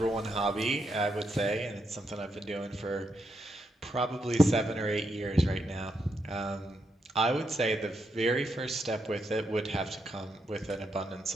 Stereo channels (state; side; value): normal; both; correlation 0.81